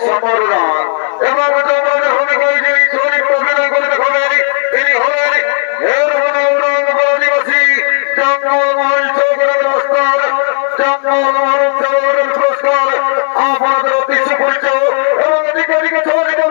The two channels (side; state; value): right; silent; 63 dB below the other